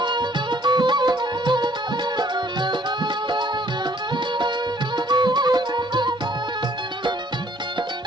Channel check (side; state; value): both; normal; correlation 0.61